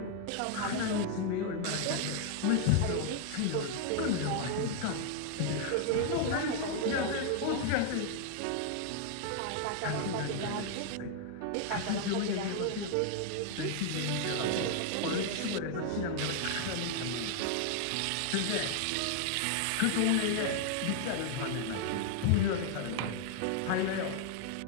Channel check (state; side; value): different; both; correlation 0.00